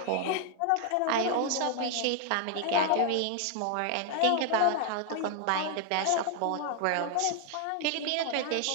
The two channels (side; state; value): both; different; correlation 0.00